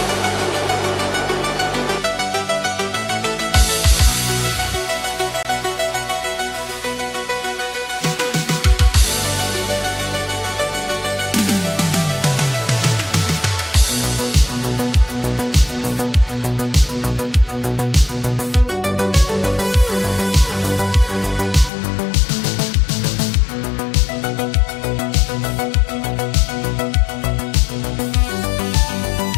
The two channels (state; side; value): drops out; right; at 21.7 s